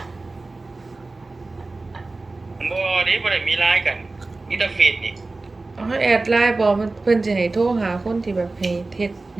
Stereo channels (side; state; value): left; quieter; 3.3 dB